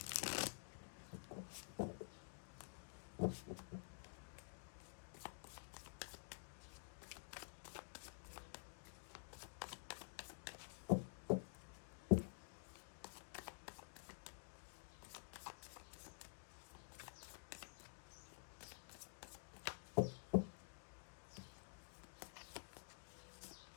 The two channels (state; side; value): silent; right; digital silence